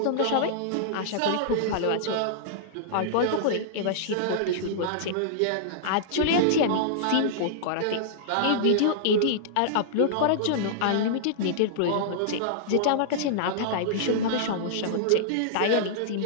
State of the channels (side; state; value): both; different; correlation -0.02